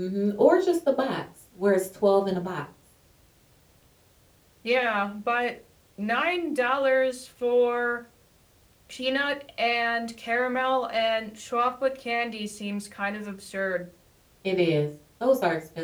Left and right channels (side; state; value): both; identical; correlation 1.00